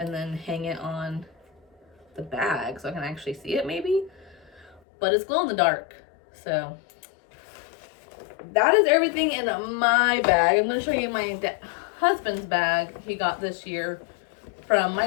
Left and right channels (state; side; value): drops out; right; at 4.8 s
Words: then hang it on the bag so I can actually see it maybe. But it's glow in the dark. So that is everything in my bag. I'm going to show you my husband's bag he got this year from my